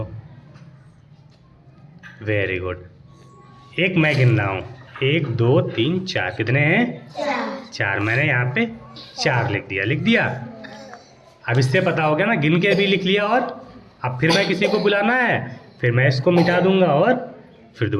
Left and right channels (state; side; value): identical; both; correlation 1.00